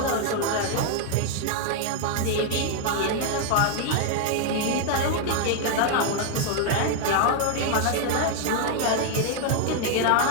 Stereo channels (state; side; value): different; both; correlation 0.00